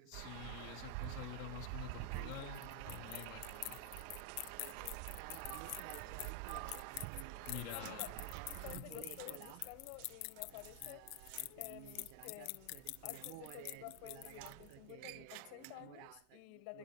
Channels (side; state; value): both; different; correlation 0.00